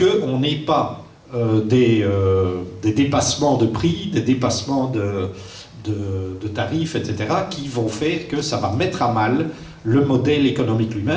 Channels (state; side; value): identical; both; correlation 1.00